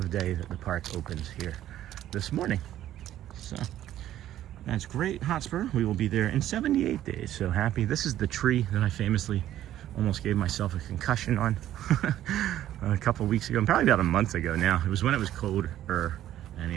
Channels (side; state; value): left; quieter; 12.5 dB